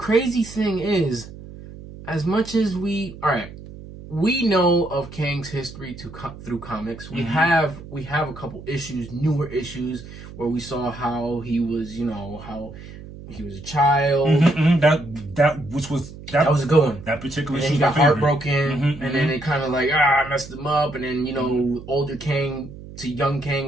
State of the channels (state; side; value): noise; right; hum, 15 dB below the sound